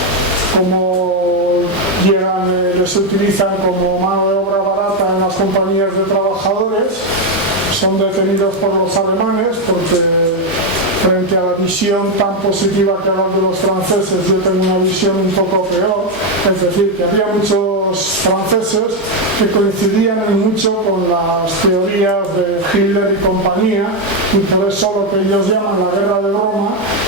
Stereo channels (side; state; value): both; normal; correlation 0.05